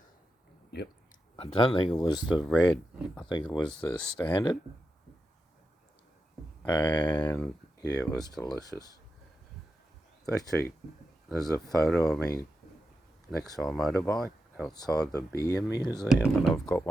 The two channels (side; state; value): both; normal; correlation 0.88